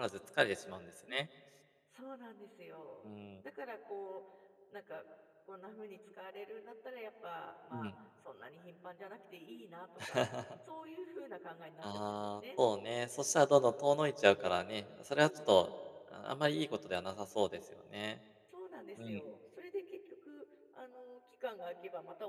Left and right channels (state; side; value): identical; both; correlation 1.00